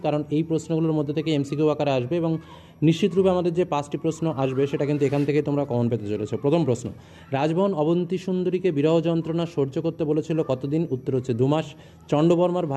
কারণ এই প্রশ্নগুলোর মধ্যে থেকে এমসিকিউ আকারে আসবে এবং নিশ্চিতরূপে আমাদের যে 5টি প্রশ্ন আসবে সেটা কিন্তু এখান থেকে তোমরা কমন পেতে চলেছো। প্রথম প্রশ্ন, রাজবহন অবন্তী সুন্দরীকে বিরহ যন্ত্রণা সহ্য করতে বলেছিল কতদিন? উত্তর হচ্ছে 2 মাস। চণ্ডবর্মার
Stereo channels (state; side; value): identical; both; correlation 1.00